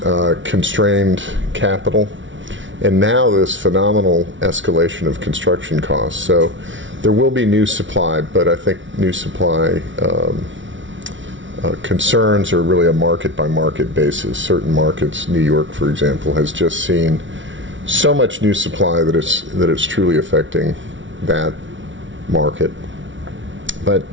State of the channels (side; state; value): left; late; 0.56 ms